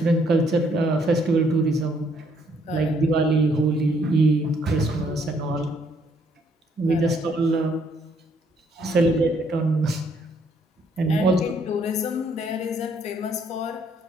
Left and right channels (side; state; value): both; normal; correlation 0.68